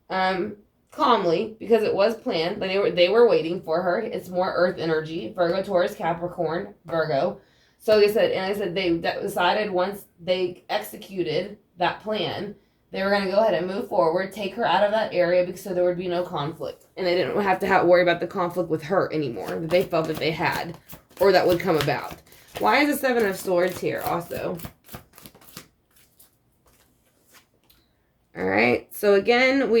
calmly, because it was planned. They were waiting for her. It's more earth energy. Virgo, Taurus, Capricorn, Virgo. So they said, they decided once they executed that plan, they were going to go ahead and move forward, take her out of that area so there would be no conflict. And they didn't have to worry about the conflict with her anymore that they felt that they had or that would come about. Why is the Seven of Swords here also? All right. So again,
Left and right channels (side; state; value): both; identical; correlation 1.00